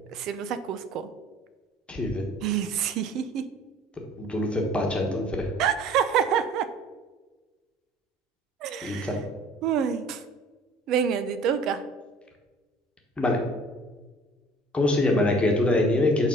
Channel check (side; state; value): both; normal; correlation 0.50